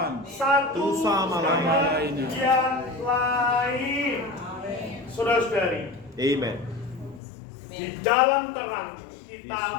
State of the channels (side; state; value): right; drops out; at 7.2 s